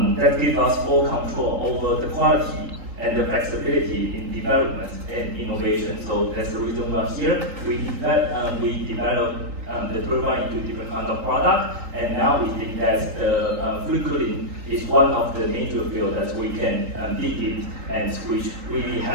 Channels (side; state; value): left; late; 3.8 ms